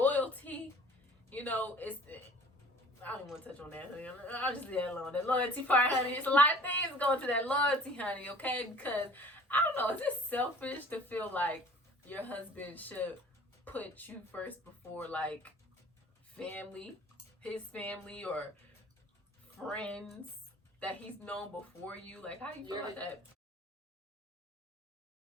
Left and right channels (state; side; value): normal; both; correlation 0.49